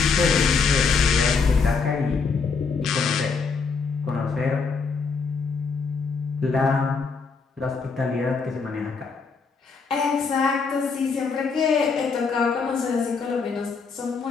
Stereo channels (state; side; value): quieter; right; 5.0 dB